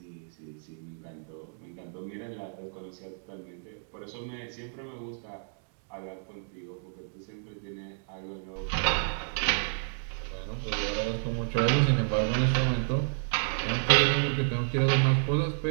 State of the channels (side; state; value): left; silent; digital silence